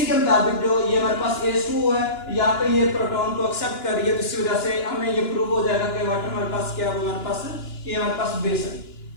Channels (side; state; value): right; late; 2.9 ms